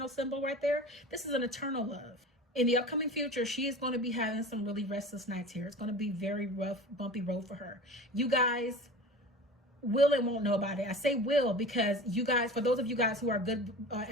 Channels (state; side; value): normal; both; correlation 0.36